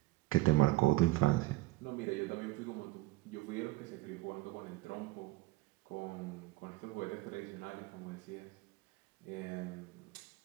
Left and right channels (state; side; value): quieter; left; 19.1 dB